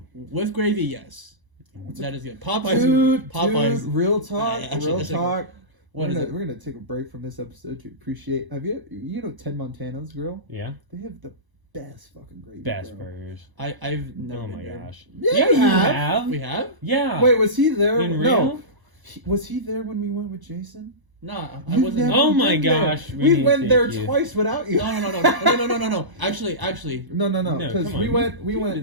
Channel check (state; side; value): late; left; 1.0 ms